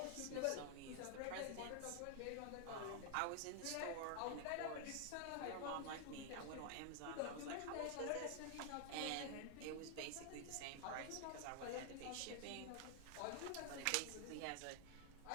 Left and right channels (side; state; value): both; different; correlation 0.00